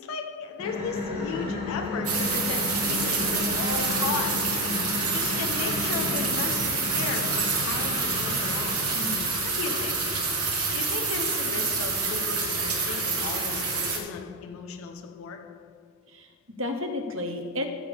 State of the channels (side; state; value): both; normal; correlation 0.10